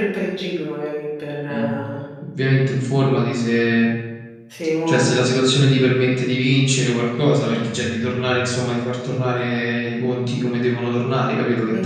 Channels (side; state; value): both; identical; correlation 1.00